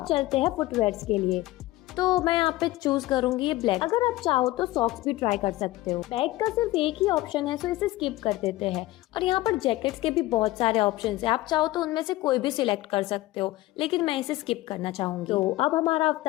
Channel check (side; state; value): right; quieter; 17.8 dB